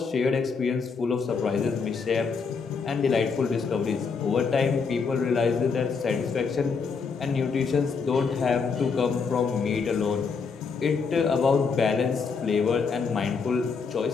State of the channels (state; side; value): quieter; right; 5.3 dB